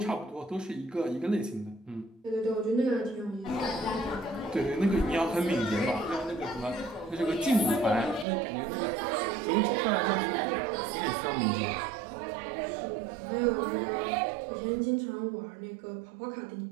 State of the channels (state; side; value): drops out; left; at 8.2 s